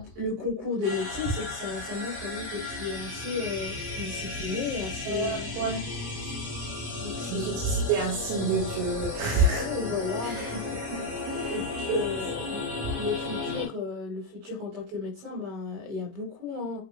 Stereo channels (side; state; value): left; late; 26 ms